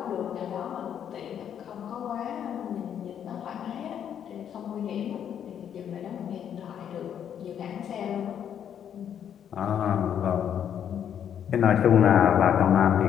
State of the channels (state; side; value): quieter; right; 9.0 dB